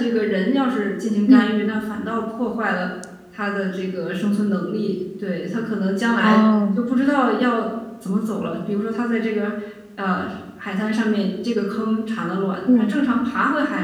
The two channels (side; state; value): both; identical; correlation 1.00